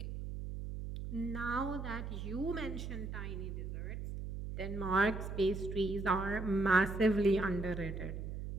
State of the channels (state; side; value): noise; right; hum, 6 dB below the sound